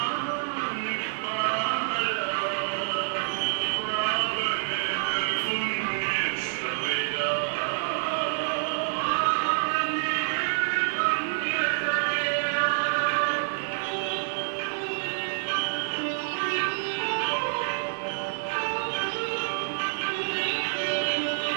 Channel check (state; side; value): silent; left; digital silence